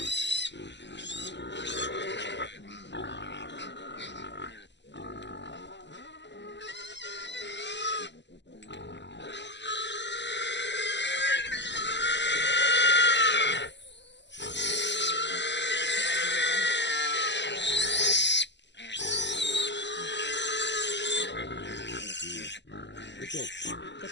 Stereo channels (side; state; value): right; late; 0.51 ms